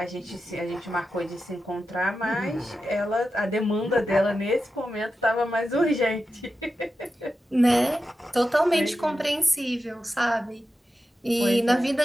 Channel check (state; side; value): normal; both; correlation 0.91